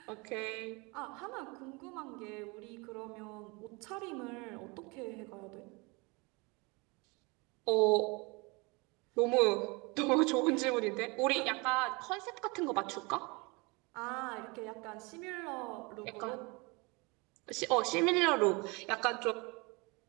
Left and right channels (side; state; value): left; quieter; 27.6 dB